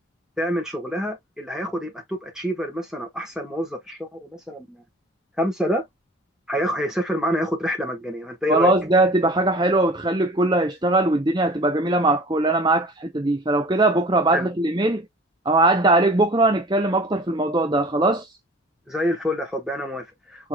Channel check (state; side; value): normal; both; correlation 0.45